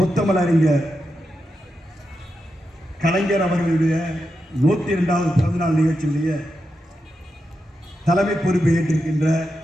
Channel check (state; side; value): normal; both; correlation 0.87